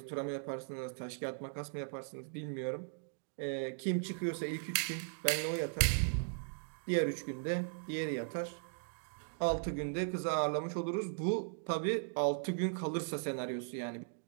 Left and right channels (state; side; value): silent; left; digital silence